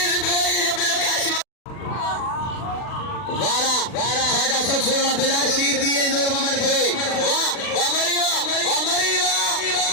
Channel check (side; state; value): right; late; 40 ms